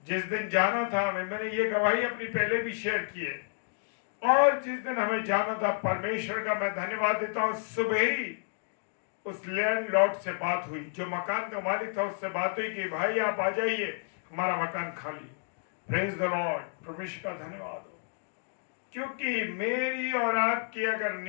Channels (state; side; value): silent; right; digital silence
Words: जिस दिन जाना था, मैंने ये गवाही अपनी पहले भी शेयर की है, और जिस दिन हमें जाना था, परमेश्वर का मैं धन्यवाद देता हूं, सुबह ही उस लैंडलॉर्ड से बात हुई, जो मकान का मालिक था, उससे बात हुई कि भाई आप आ जाइए, हमारा मकान खाली है। Praise the Lord. परमेश्वर का धन्यवाद हो, क्योंकि मेरी और आपकी अगर